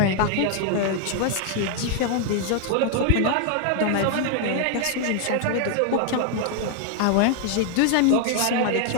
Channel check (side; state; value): both; different; correlation 0.00